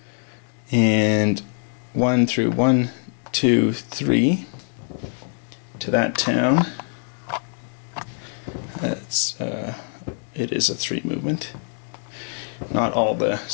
and 1 through 1, 2, 3 to that town. That's it is a 3 movement. Not all the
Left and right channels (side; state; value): right; silent; 56 dB below the other